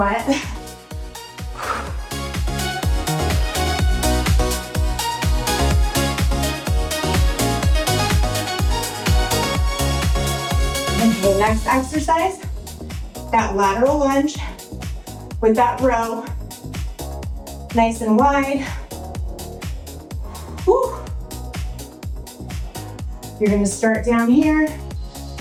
Okay, next exercise, that lateral lunge with that row, nice and wide. Whew. You're gonna start down here,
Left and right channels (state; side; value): identical; both; correlation 1.00